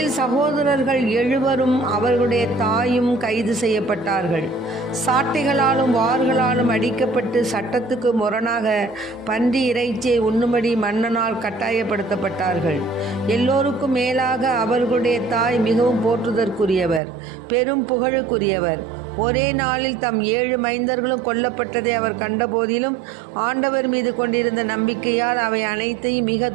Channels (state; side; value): drops out; left; at 17.0 s